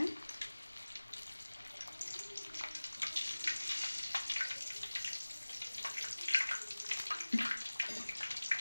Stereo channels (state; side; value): inverted; both; correlation -1.00